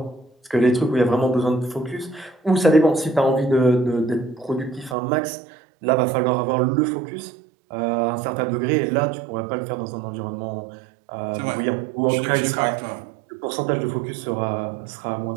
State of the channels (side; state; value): left; drops out; at 5.0 s